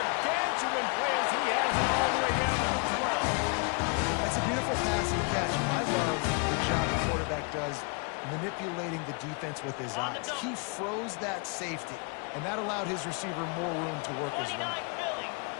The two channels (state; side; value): quieter; right; 34.1 dB